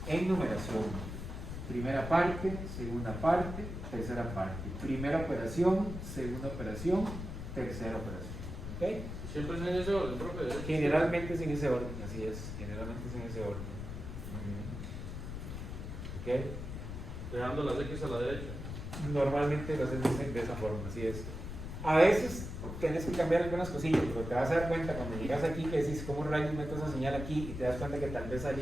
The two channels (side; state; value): left; noise; rumble, 7 dB below the sound